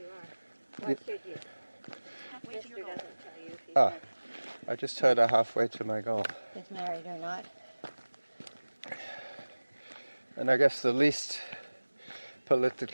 are. What should you? Halfway to Mister your goal. doesn't tell you if he's Ah. I just heard her halfway to my goal. married or not. And I guess the least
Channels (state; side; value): inverted; both; correlation -1.00